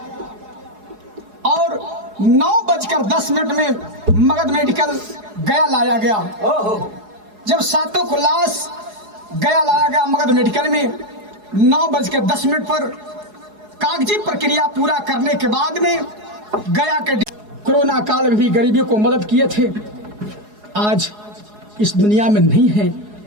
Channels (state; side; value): late; left; 4.8 ms